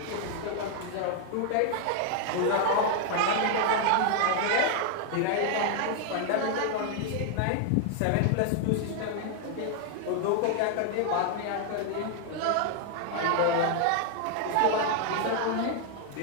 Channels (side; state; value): both; different; correlation 0.00